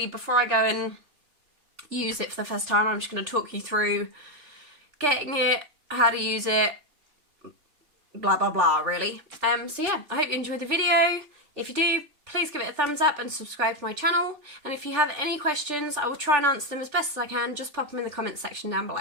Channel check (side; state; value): left; late; 3.4 ms